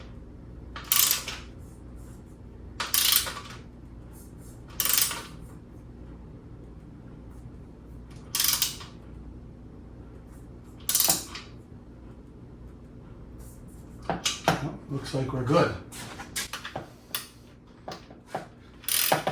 looks like we're good.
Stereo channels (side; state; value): both; identical; correlation 1.00